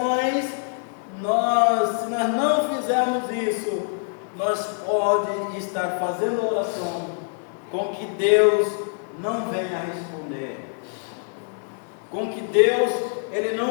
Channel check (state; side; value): silent; right; 57 dB below the other